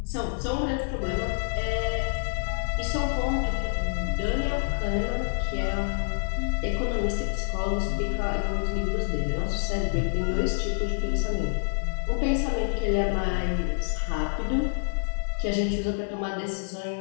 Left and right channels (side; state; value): right; silent; digital silence